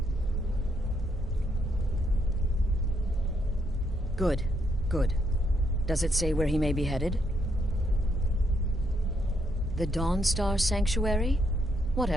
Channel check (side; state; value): both; normal; correlation 0.75